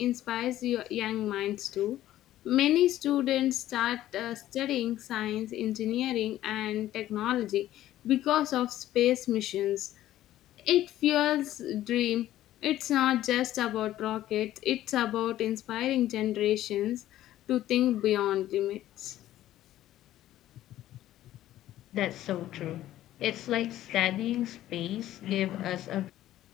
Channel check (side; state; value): right; quieter; 13.6 dB